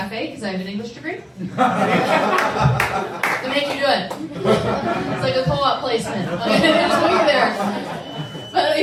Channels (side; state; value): both; identical; correlation 1.00